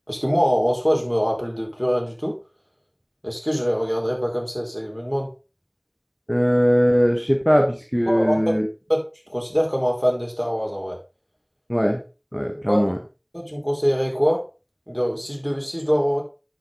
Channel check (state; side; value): identical; both; correlation 1.00